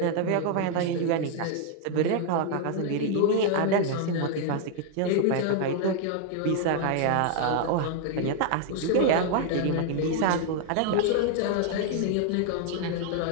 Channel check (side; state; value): both; different; correlation 0.00